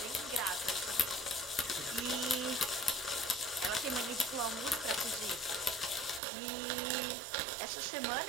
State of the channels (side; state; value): left; drops out; at 6.2 s